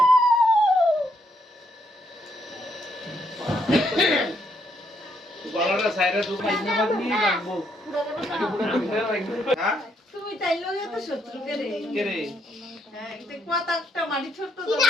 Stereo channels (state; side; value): normal; both; correlation 0.74